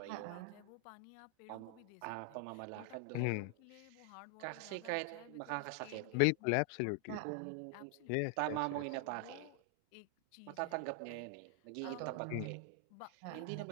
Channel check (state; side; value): different; both; correlation 0.00